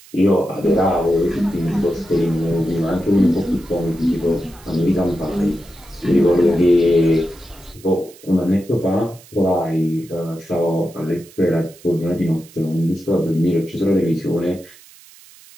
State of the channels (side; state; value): right; noise; hiss, 23 dB below the sound